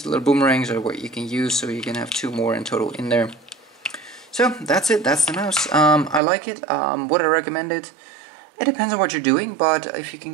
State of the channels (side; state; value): left; drops out; at 6.2 s